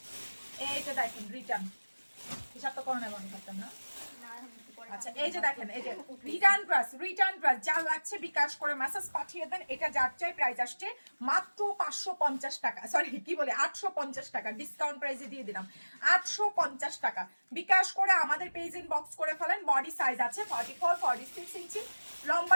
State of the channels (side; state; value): both; inverted; correlation -1.00